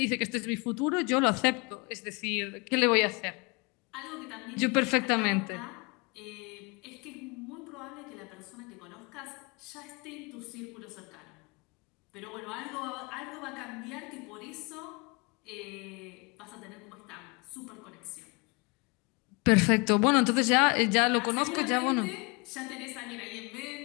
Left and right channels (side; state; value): right; quieter; 29.2 dB